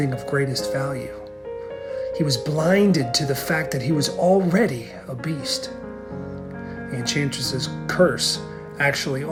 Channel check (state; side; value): identical; both; correlation 1.00